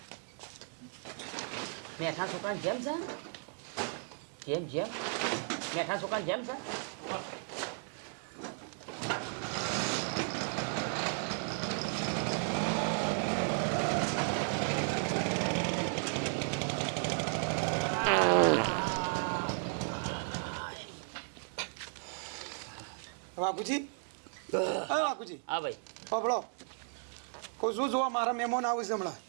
મેઠા છોકરાને જેમ છે જેમ મેઠા છોકરાને જેમ છે. વાઘુજી હા વાઘુજી હા ભાઈ પબળો કહું છું જોવા મારા મહેમાન આવે છે હમણાં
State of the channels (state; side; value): silent; left; 55 dB below the other